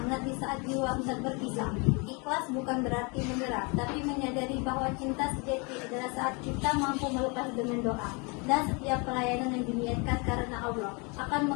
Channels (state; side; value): quieter; right; 31.2 dB